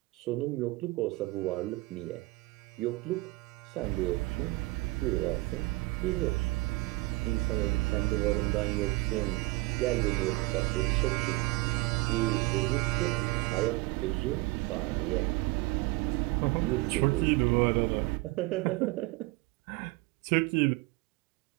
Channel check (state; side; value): quieter; left; 22.6 dB